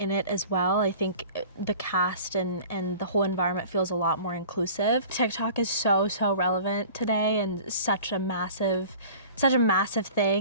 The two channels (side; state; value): both; inverted; correlation -0.44